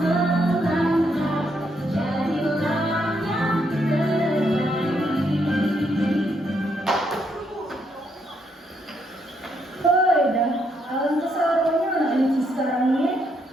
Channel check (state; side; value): normal; both; correlation 0.75